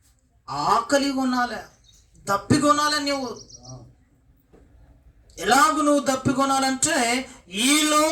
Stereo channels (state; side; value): identical; both; correlation 1.00